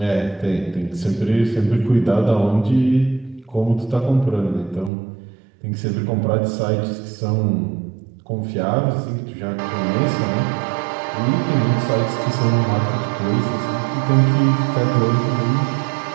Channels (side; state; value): left; drops out; at 4.9 s